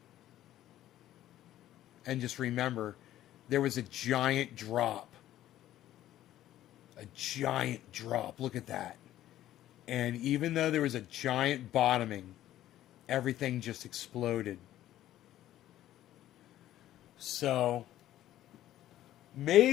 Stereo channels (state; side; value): quieter; right; 13.3 dB